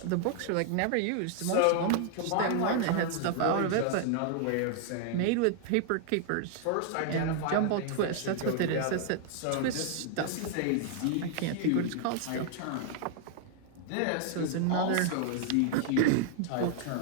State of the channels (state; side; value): different; both; correlation 0.00